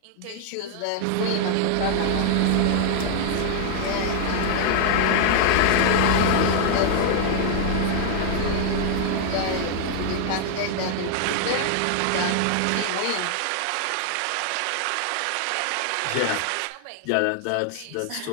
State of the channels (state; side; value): different; both; correlation 0.00